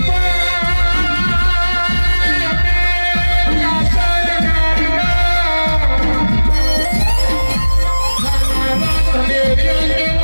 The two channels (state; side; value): inverted; both; correlation -1.00